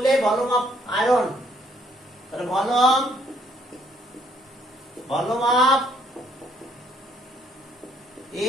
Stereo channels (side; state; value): both; normal; correlation 0.67